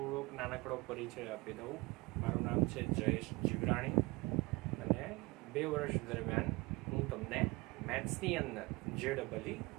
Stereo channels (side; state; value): left; quieter; 24.3 dB